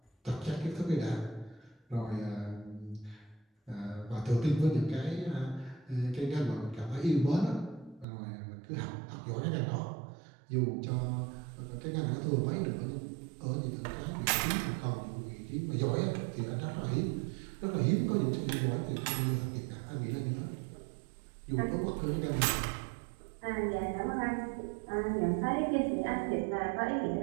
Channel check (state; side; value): drops out; left; at 8.1 s